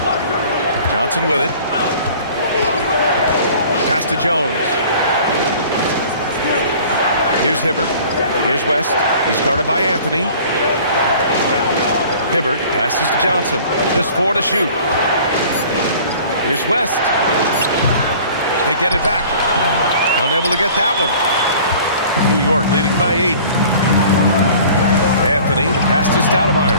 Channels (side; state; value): both; inverted; correlation -0.48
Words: Johnson with it. Pass to Jones. Here's Hibbert. Here's West. He's guarded by Anthony. Hibbert passes to Johnson. Just 4 to shoot. Here's West. They get it back. Unable to get that one. New York leading by 8. Anthony, the pass to Stoudemire.